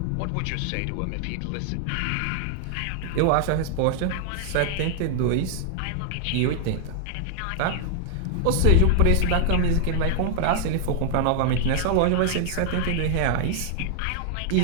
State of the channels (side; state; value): both; different; correlation 0.00